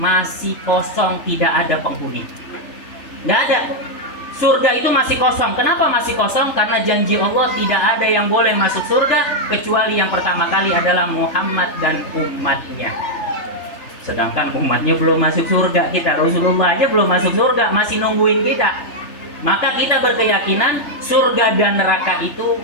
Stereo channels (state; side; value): late; right; 3.4 ms